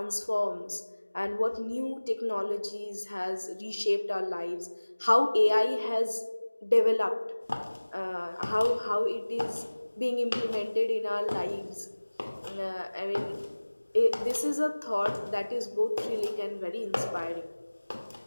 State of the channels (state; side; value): inverted; both; correlation -1.00